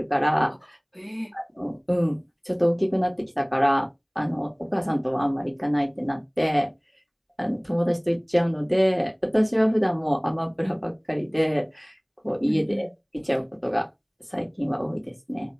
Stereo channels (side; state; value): both; identical; correlation 1.00